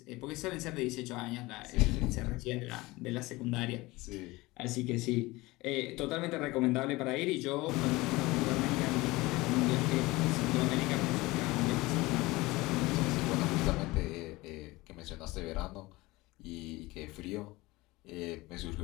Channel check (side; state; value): right; quieter; 21.1 dB